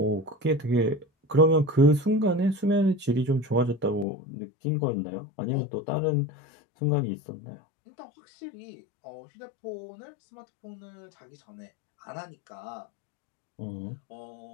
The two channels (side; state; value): right; drops out; at 4.0 s